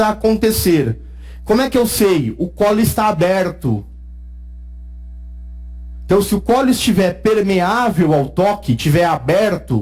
acontecer. Como é que eu sei? O colo está aberto. Então, se o colo estiver permeável ao toque, estiver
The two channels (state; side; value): identical; both; correlation 1.00